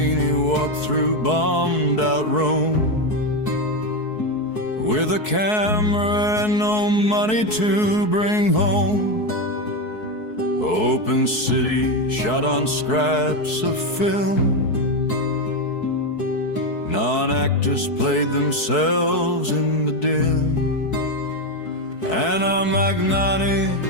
walked through bombed out Rome with a camera and no money to bring home. Open city shot on scraps of film. Non-actors played themselves in the dim. Anna Magnani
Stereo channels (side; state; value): right; late; 4.7 ms